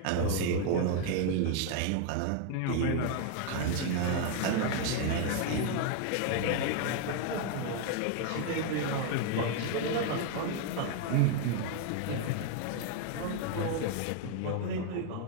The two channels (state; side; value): different; both; correlation 0.01